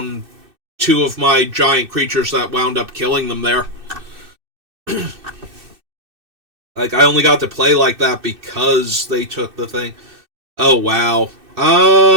2 of my giant creatures that wound up killing them there. Like, I only got to play like that because they took the thing. Oh, wow.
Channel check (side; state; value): left; late; 2.6 ms